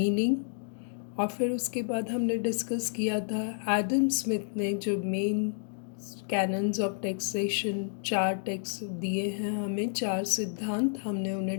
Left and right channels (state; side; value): silent; right; digital silence